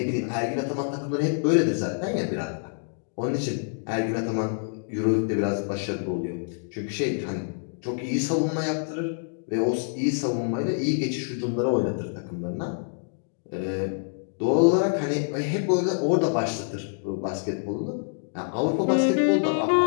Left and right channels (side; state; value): right; silent; digital silence